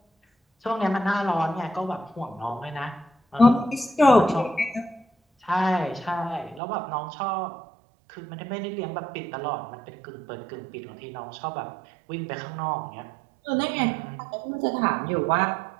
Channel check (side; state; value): left; drops out; at 6.6 s